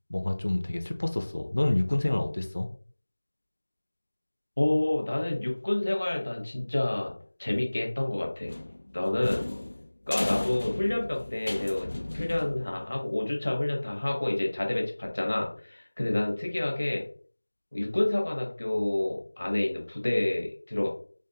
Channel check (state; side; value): inverted; both; correlation -1.00